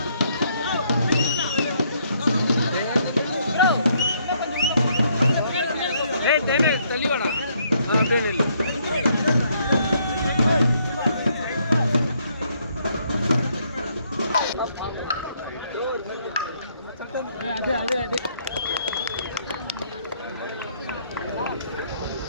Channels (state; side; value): inverted; both; correlation -0.70